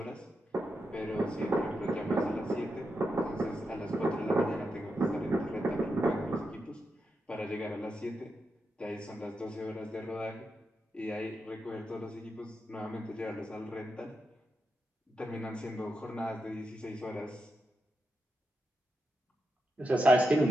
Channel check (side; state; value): both; normal; correlation 0.86